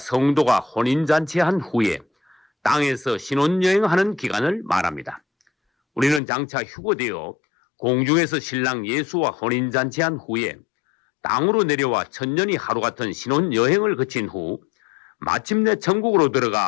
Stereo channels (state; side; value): drops out; right; at 6.2 s